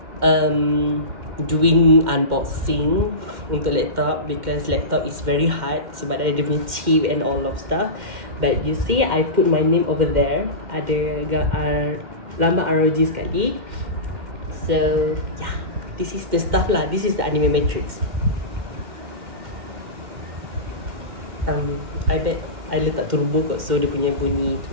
doing unboxing untuk laptop because laptop is very hard sebab ada dia punya chip and all of stuff. But you see, I put my name over there. Ada lambang ROG sekali. So yeah, this is the stuff lah. This is the anime matrix. I bet I letak turbo kot, so dia punya bunyi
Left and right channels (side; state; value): left; late; 2.1 ms